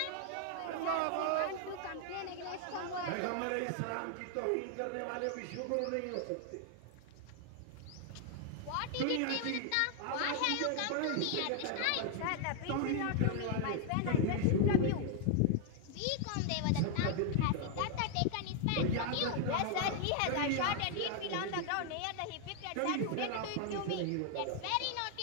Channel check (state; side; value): different; both; correlation 0.00